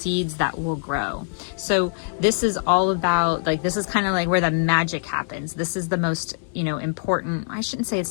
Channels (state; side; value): silent; right; digital silence